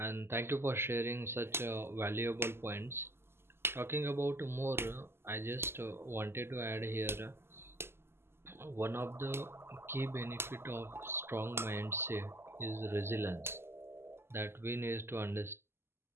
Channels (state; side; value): late; left; 0.12 ms